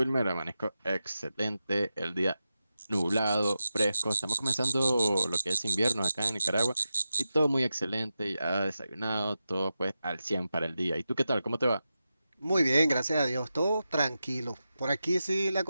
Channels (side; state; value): both; inverted; correlation -0.91